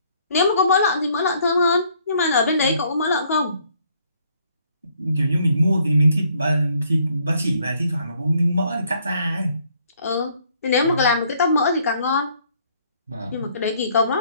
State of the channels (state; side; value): inverted; both; correlation -0.65